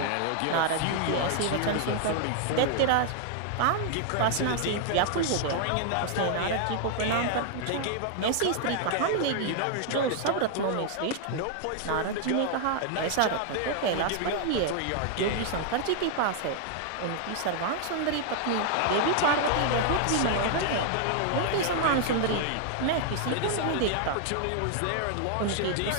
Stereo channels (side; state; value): both; different; correlation 0.00